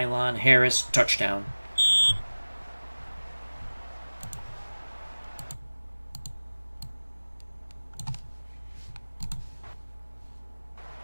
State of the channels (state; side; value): inverted; both; correlation -1.00